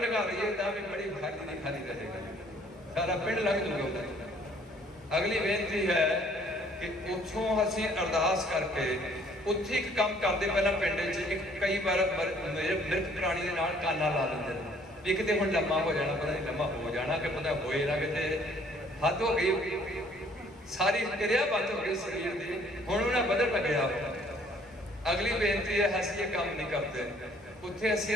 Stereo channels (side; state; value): both; normal; correlation 0.60